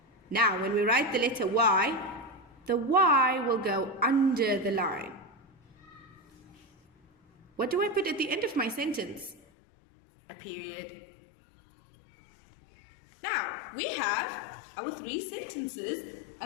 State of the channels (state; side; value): drops out; right; at 9.4 s